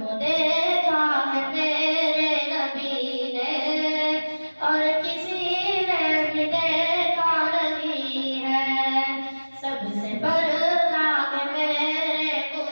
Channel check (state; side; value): inverted; both; correlation -1.00